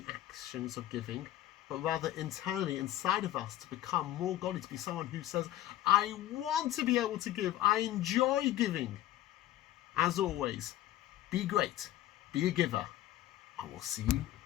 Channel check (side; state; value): right; quieter; 13.7 dB